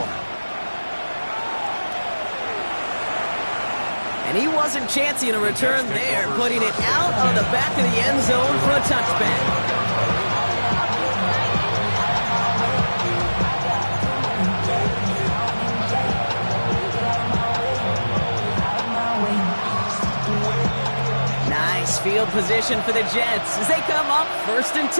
And he wasn't chancing a return there, putting it out of the back of the end zone for a touchback. Nice field position for the Jets as they come up 1st and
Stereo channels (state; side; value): inverted; both; correlation -1.00